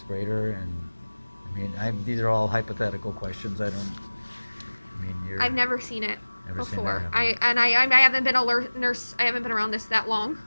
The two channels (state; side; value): inverted; both; correlation -1.00